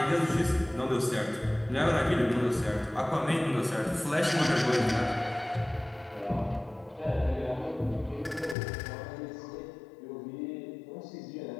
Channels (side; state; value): right; drops out; at 8.6 s